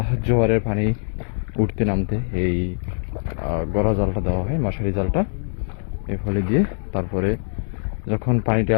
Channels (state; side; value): silent; right; digital silence